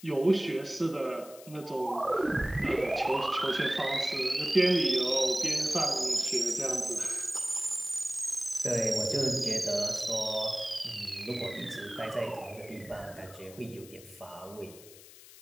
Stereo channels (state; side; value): noise; left; hiss, 19 dB below the sound